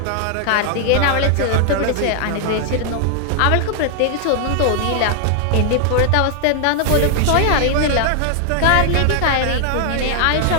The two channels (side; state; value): both; different; correlation 0.00